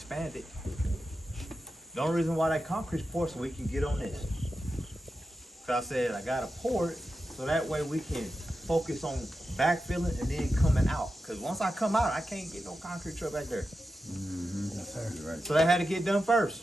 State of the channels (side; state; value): both; normal; correlation 0.91